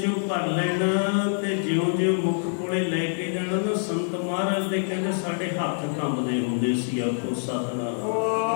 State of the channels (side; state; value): right; silent; digital silence